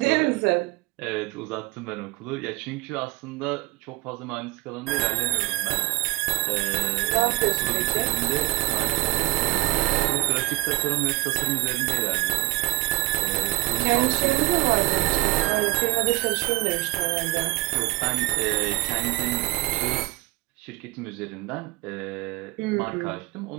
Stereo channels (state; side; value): quieter; left; 20.1 dB